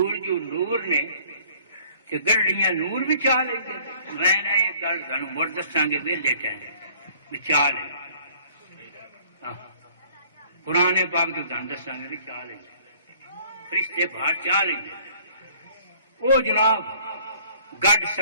جو نور نے تے گڈڑیاں نور بھی چاہ لئی۔ میں نے یہ گل سانو مڑ دساں گے ویلے ٹائم بھی چاہ لے، قرآن پاک تو تھانوں دساں گے بھی چاہ لے، فرشتے باہر چاہ لیں گے۔ وہ جناب گڈ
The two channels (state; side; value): inverted; both; correlation -0.56